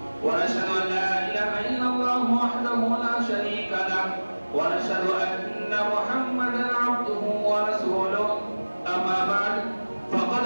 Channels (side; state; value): both; inverted; correlation -1.00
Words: ونشهد أن لا إله إلا الله وحده لا شريك له ونشهد أن محمدا عبده ورسوله. أما بعد فقد